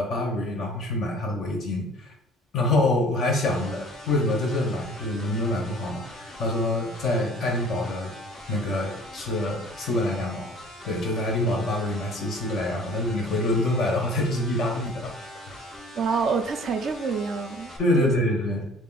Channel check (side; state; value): both; normal; correlation 0.49